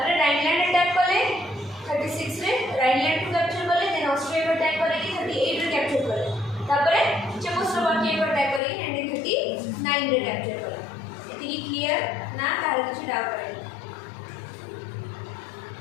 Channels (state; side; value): drops out; right; at 8.6 s